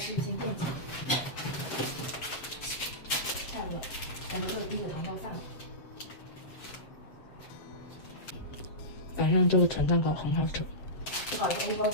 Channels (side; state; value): right; late; 7.8 ms